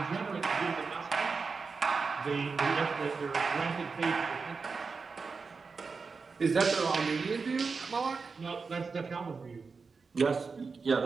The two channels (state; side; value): quieter; left; 4.7 dB